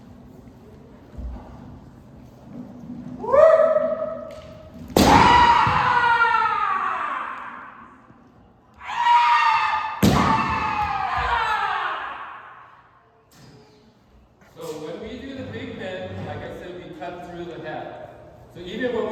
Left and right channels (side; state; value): both; identical; correlation 1.00